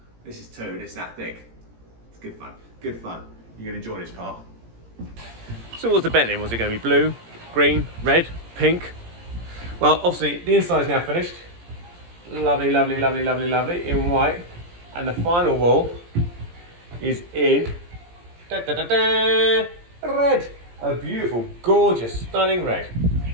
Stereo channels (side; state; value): left; late; 17 ms